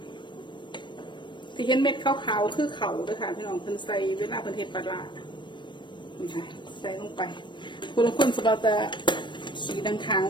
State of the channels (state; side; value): late; right; 0.22 ms